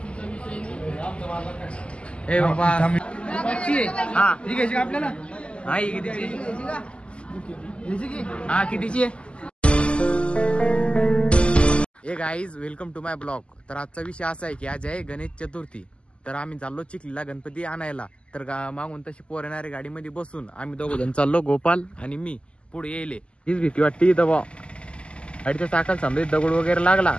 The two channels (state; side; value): late; right; 0.054 ms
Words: ए बाबा हा ही घ्यायची आपल्याला. हा ही कितीची? हा कितीची? ए guys, welcome to my blog. तर आजचा विषय असा आहे की आज आहे गणेश चतुर्थी. तर आम्ही चाललो चिखलीला गणपती आणायला. तर मागून तशी पोर येणारी गाडीमध्ये बसून आम्ही दोघं जण चाललो, गोपाल आणि मी. पुढे येईल हीच भीती वाटते इथं बा, गाडीच्या चाकाला समजा दगड वगैरे लागला